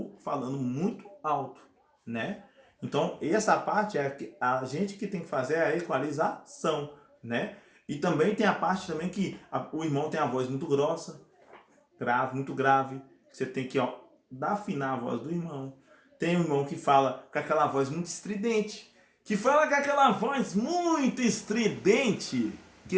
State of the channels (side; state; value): both; identical; correlation 1.00